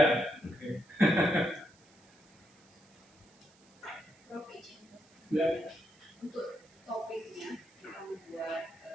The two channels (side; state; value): right; noise; hiss, 30 dB below the sound